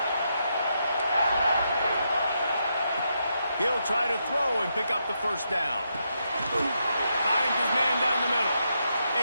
He'll try to throw and pick up the first down. Finds his man down the middle.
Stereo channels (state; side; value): inverted; both; correlation -0.81